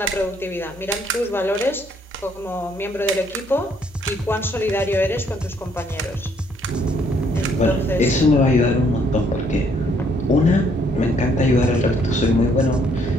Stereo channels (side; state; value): both; normal; correlation 0.67